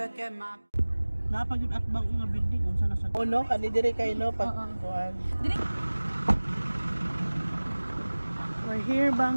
Napag yung atbang nga building unsa na sa no kani dire kay no pag kuan. We're here,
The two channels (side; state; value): both; inverted; correlation -1.00